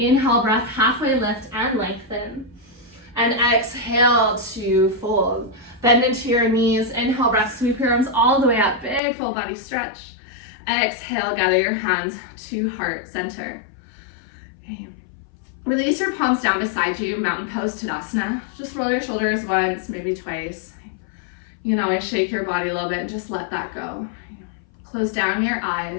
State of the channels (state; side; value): drops out; right; at 9.0 s